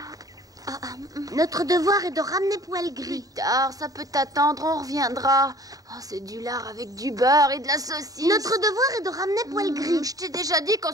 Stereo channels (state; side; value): late; left; 0.18 ms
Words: Notre devoir est de ramener Poil Gris. Plus tard, ça peut attendre, on reviendra. Oh, c'est du lard avec du beurre et de la saucisse. Notre devoir est de ramener Poil Gris. Je t'ai déjà dit qu'on